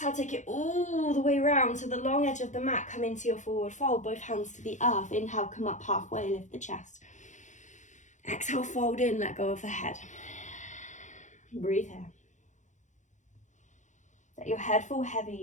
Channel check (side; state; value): right; late; 0.35 ms